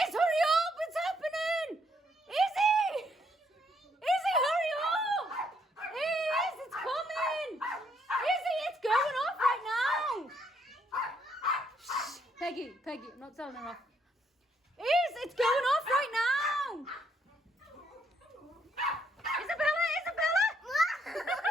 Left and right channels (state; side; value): normal; both; correlation 0.72